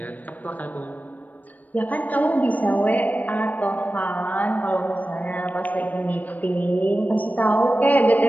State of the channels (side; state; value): right; late; 0.079 ms